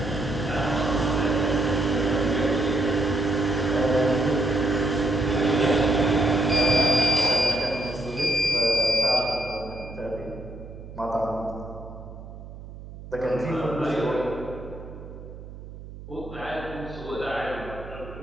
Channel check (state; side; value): noise; right; hum, 14 dB below the sound